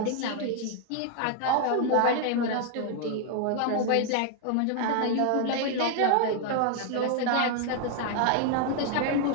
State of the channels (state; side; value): different; both; correlation 0.00